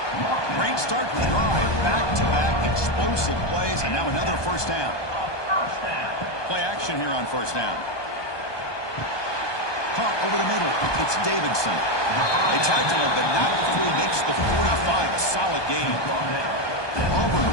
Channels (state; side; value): late; right; 1.2 ms